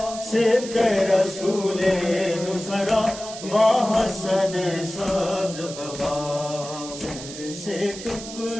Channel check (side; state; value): right; noise; hiss, 12 dB below the sound